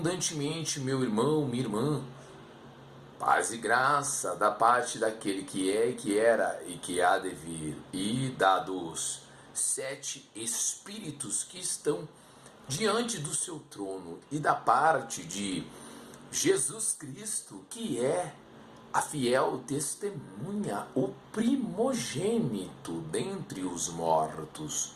meu irmão, minha irmã. Paz e graça da parte daquele que é, que era e que há de vir, e dados 7 Espíritos que estão diante do seu trono, e da parte de Jesus Cristo, que é a fiel testemunha, o primogênito dentre os mortos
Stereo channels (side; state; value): both; identical; correlation 1.00